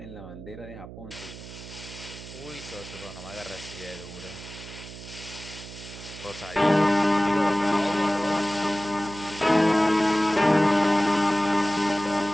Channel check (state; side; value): noise; right; hum, 14 dB below the sound